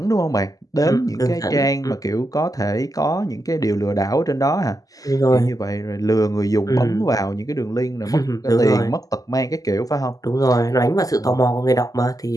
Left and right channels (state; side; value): late; right; 0.17 ms